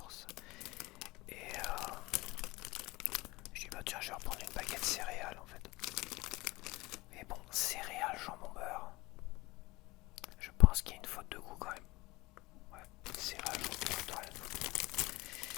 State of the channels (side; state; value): right; quieter; 21.5 dB